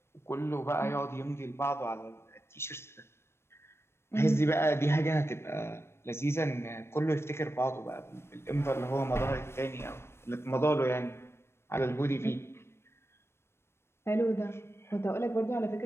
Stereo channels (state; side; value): late; right; 0.12 ms